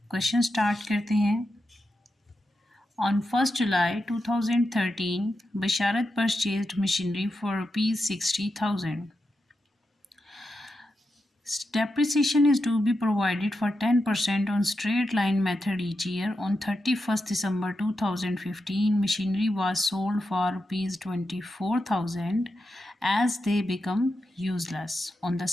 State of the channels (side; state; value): both; normal; correlation 0.87